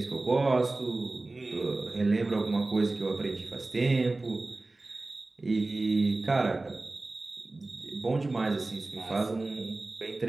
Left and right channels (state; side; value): quieter; left; 3.1 dB